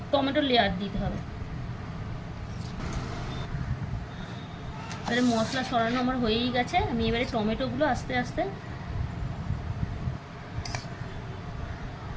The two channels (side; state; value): both; identical; correlation 1.00